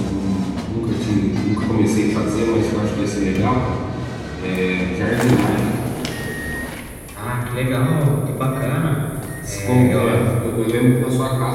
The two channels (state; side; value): identical; both; correlation 1.00